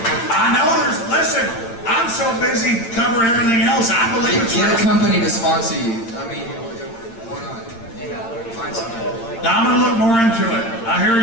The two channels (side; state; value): right; late; 8.8 ms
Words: I know listen, I'm so busy covering everything else, I believe it's real. Get a company to sponsor you. I mean, why not? Find something. Now I'm going to look more into it. I hear